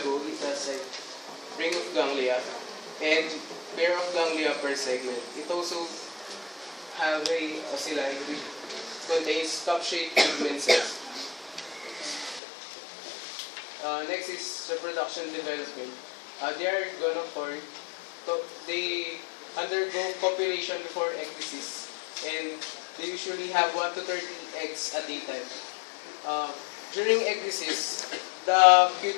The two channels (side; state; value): right; drops out; at 12.4 s